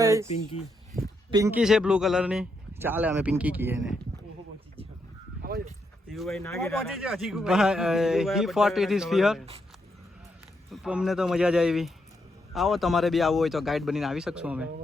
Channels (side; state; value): both; normal; correlation 0.79